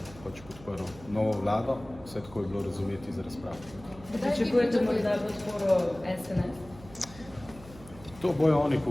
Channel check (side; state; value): right; noise; hum, 19 dB below the sound